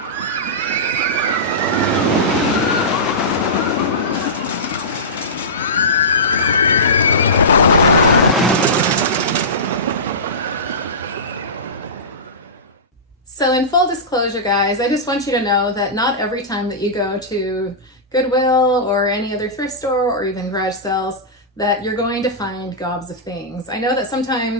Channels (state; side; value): normal; both; correlation -0.18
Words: So in full disclosure, guys, I just want you to know that not every time that you go to Goodwill or any other thrift store or even garage sales that you're going to find gobs of things. I know that